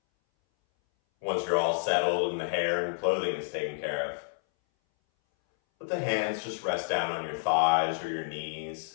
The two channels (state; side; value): silent; right; 58 dB below the other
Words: Once you're all settled and the hair and clothing is taken care of, let the hands just rest down on your thighs or your knees.